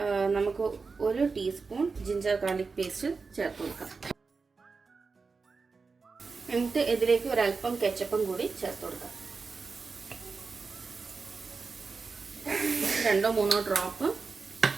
നമുക്ക് 1 ടീസ്പൂൺ ജിഞ്ചർ ഗാർലിക് പേസ്റ്റ് ചേർത്ത് കൊടുക്കാം. എന്നിട്ട് ഇതിലേക്ക് ഒരല്പം കെച്ചപ്പും കൂടി ചേർത്ത് കൊടുക്കാം. 2-3 ഡ്രോപ്പ്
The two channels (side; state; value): left; quieter; 4.6 dB